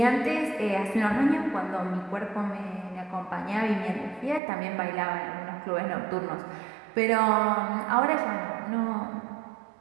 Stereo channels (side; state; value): left; drops out; at 4.4 s